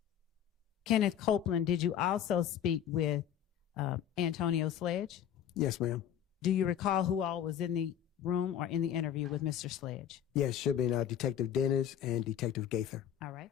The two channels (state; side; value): quieter; right; 9.8 dB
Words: Kenneth Copeland, did you also speak with Antonio Sledge? Yes, ma'am. Do you recall who all was in the room or in the interview with Mr. Sledge? Yes, should be Detective Dennis and Detective Gaither. All right.